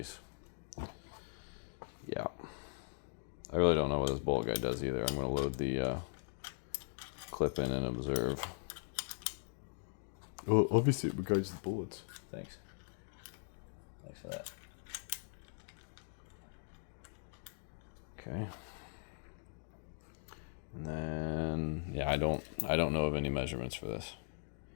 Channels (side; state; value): right; silent; digital silence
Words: Yeah. I really don't know what this bolt guy does either. I'm going to load the clip in and observe. Well, obviously it guides the bullets. Thanks. Thanks for that. Okay. And then, yeah, I don't know of any measurements for this,